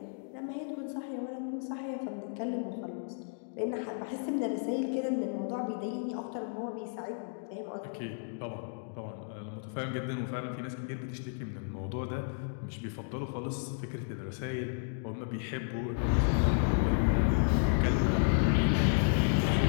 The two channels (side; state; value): right; silent; digital silence